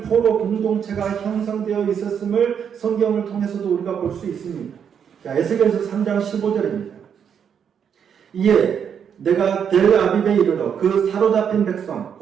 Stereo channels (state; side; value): quieter; left; 7.8 dB